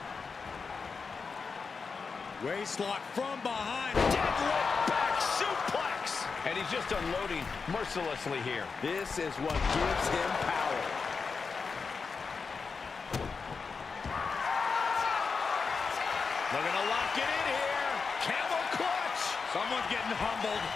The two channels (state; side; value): quieter; right; 5.0 dB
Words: Waistlock from behind. Deadlift back suplex. And he's just unloading mercilessly here. This is what gives him power. Looking to lock it in here. Camel clutch. Someone's getting humbled.